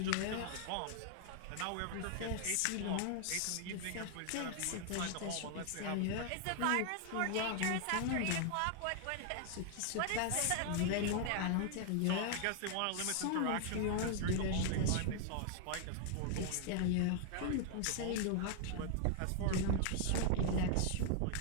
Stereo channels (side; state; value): both; different; correlation 0.00